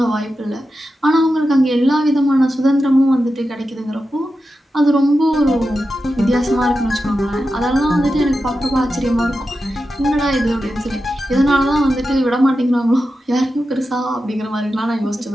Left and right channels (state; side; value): normal; both; correlation 0.91